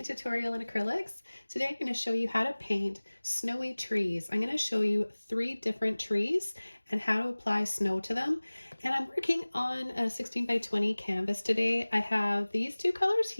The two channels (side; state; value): both; inverted; correlation -1.00